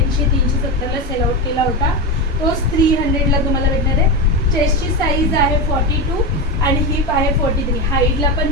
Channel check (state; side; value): normal; both; correlation 0.16